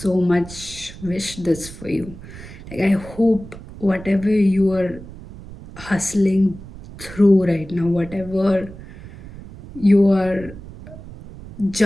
much wish this for you. Like, I hope whatever you are hustling through right now, whatever you are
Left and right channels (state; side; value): noise; right; rumble, 16 dB below the sound